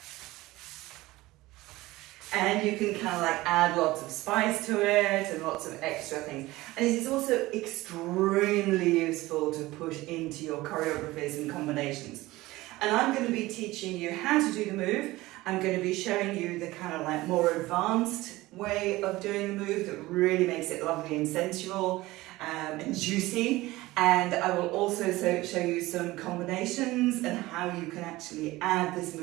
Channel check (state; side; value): quieter; left; 18.8 dB